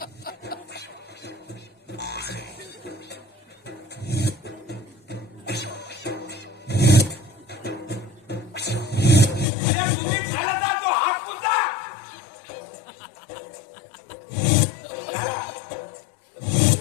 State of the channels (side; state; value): right; drops out; at 9.5 s